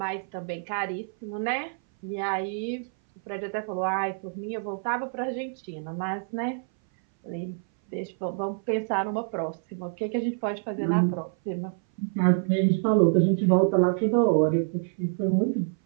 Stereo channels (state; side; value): silent; left; 59 dB below the other